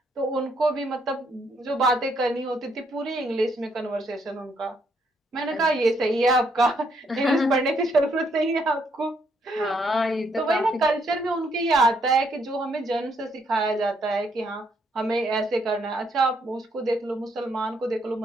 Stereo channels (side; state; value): both; normal; correlation 0.72